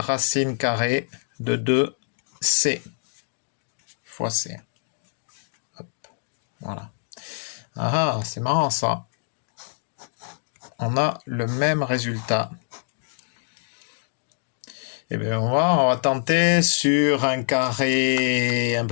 carrée de 2c fois c. Hop, voilà. Ah, c'est marrant ça. On a le même résultat. Eh bien, on va tenter sur un carré un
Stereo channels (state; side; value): silent; right; digital silence